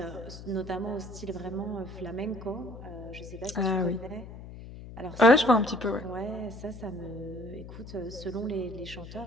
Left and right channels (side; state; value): left; noise; hum, 13 dB below the sound